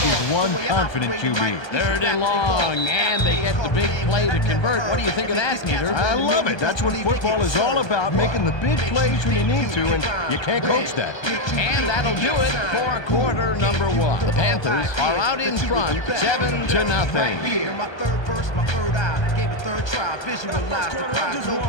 is one confident QB. 3rd and long, and they get the big play to convert. What do you think of that, Peter? I love it. That's what football is all about, making the big plays when you need to, and you can't coach that. And that'll do it for quarter number 1. The Panthers are out in front, 7-0. My third verse, my third eye, gave it third try, visualize the prize, no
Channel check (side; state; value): right; late; 1.2 ms